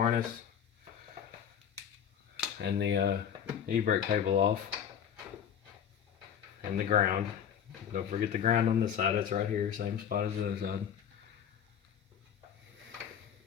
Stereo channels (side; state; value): right; quieter; 8.6 dB